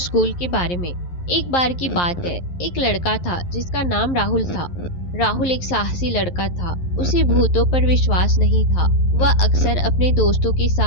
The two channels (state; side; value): late; right; 11 ms